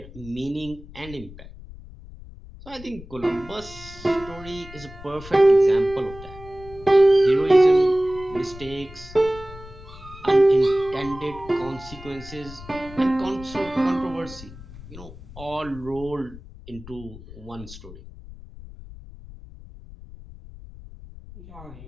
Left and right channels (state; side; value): noise; left; rumble, 16 dB below the sound